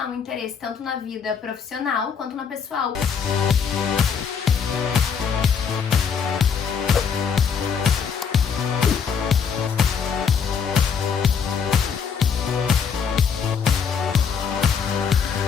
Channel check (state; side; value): quieter; right; 6.7 dB